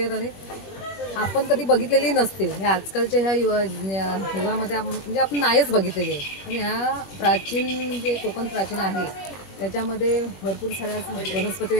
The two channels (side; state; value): right; late; 21 ms